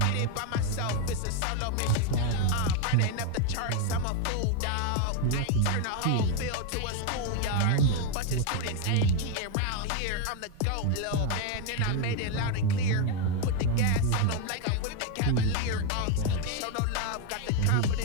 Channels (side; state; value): both; different; correlation 0.01